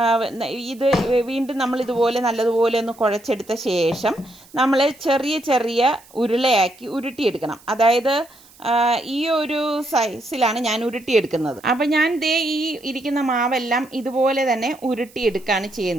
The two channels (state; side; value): noise; right; hiss, 26 dB below the sound